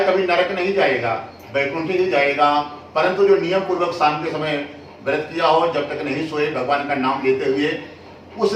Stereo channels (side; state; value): both; identical; correlation 1.00